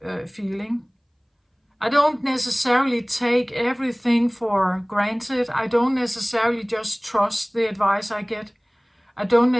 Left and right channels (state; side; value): identical; both; correlation 1.00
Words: feeling. I don't necessarily take everything for granted. I don't necessarily just trust the advice I get. I